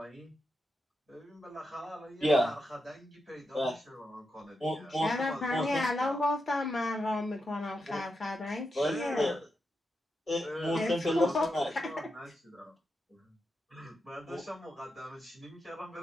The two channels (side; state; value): both; normal; correlation 0.86